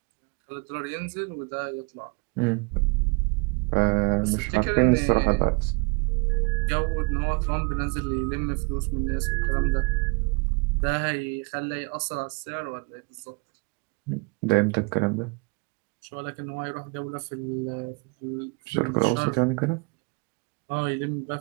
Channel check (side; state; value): left; quieter; 30.3 dB